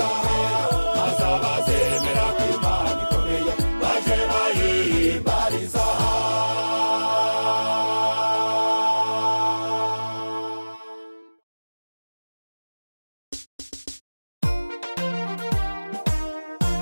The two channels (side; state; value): both; inverted; correlation -1.00